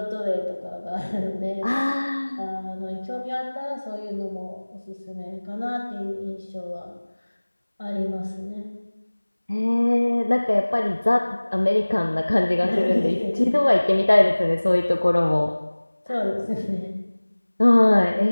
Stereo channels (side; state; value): both; inverted; correlation -1.00